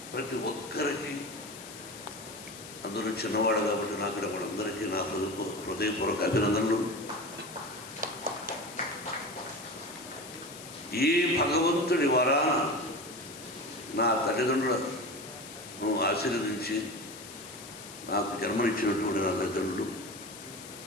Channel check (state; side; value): noise; left; hiss, 14 dB below the sound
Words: ప్రతి ఒక్కరికి, అందులో చిన్నవాడు కాబట్టి నాకు వాళ్ళందరికీ నా హృదయపూర్వక అభినందనలు. ఈ భగవంతుడి వరాన నా తల్లిదండ్రులను ఆశీర్వదించి నాకు జన్మనిచ్చినటువంటి నా తల్లిదండ్రులు,